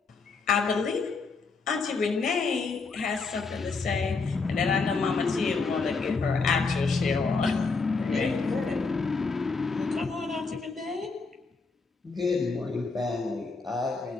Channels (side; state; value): right; quieter; 4.3 dB